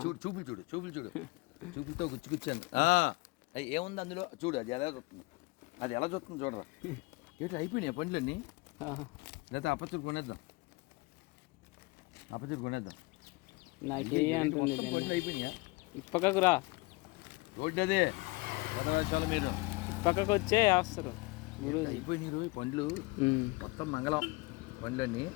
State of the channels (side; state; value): right; quieter; 24.4 dB